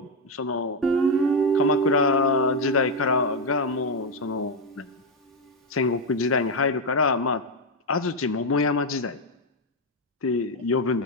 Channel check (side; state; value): both; normal; correlation 0.05